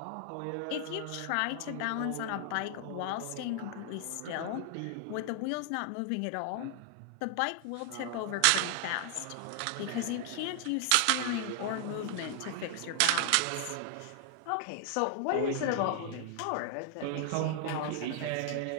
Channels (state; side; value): different; both; correlation 0.00